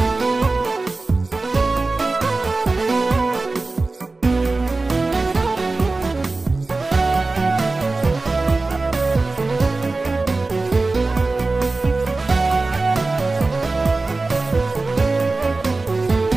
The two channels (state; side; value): quieter; left; 3.5 dB